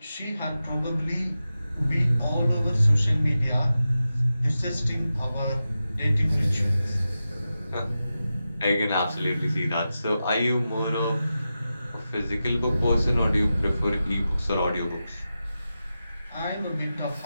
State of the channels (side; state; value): both; inverted; correlation -0.92